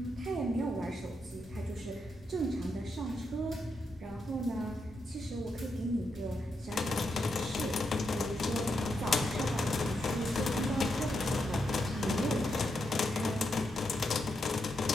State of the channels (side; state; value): both; normal; correlation 0.83